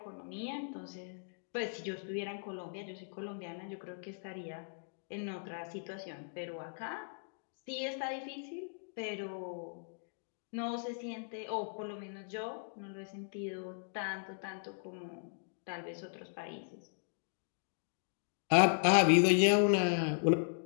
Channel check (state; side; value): silent; right; digital silence